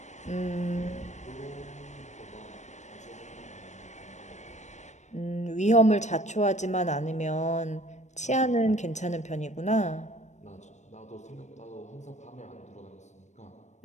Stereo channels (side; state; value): right; late; 0.34 ms